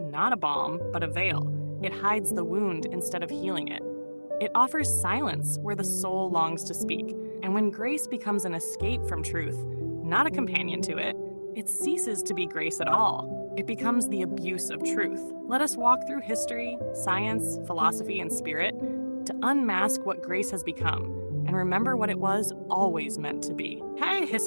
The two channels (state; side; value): inverted; both; correlation -1.00